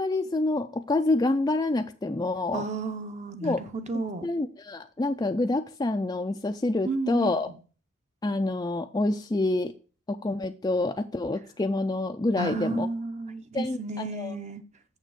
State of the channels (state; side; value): normal; both; correlation 0.72